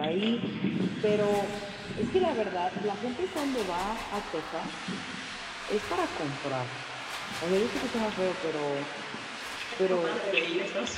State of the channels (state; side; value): identical; both; correlation 1.00